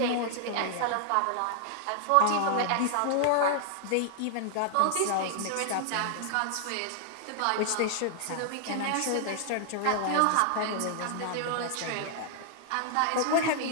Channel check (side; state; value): both; different; correlation -0.01